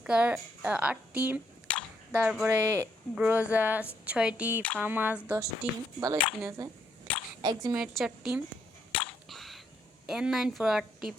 8টি, তারপরে গ্রোজা 6টি, ফামাস 10টি, ভালো স্কিন আছে, এক্সিমেট 4টি, N94 8টি,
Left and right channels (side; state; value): both; normal; correlation 0.74